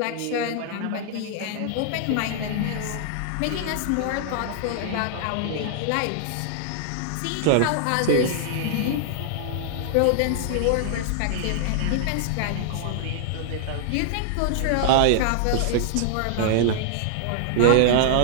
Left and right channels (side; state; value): both; different; correlation -0.01